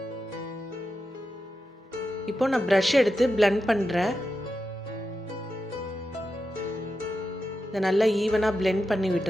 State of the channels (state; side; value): normal; both; correlation 0.89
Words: இப்போ நான் ப்ரஷ் எடுத்து பிளெண்ட் பண்ணுறேன். இதை நல்லா ஈவனாக பிளெண்ட் பண்ணி